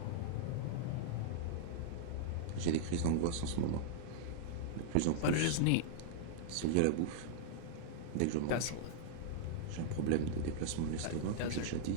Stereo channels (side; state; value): both; different; correlation -0.01